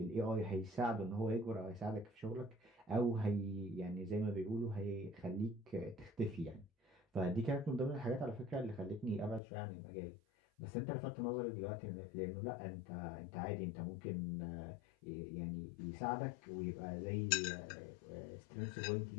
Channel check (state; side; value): drops out; right; at 9.4 s